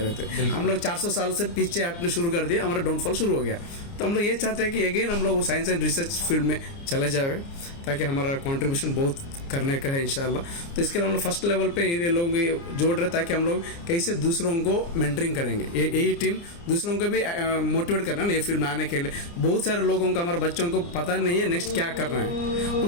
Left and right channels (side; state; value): right; late; 29 ms